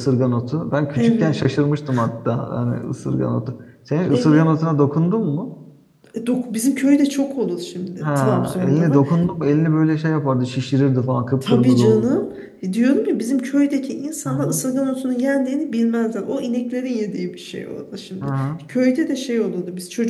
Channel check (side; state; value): both; identical; correlation 1.00